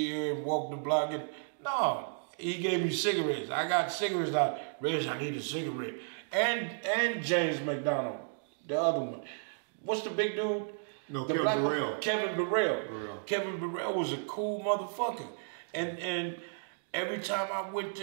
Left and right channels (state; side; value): silent; left; digital silence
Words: and walk the block. And, no, he gave me cigarettes. I got cigarettes out. Reg, I need a cigarette. And James McDonald, the other one. What's the big dude? No, the Kevin Burrell. Kevin Burrell. Kevin Burrell was a cool motherfucker. And every time I went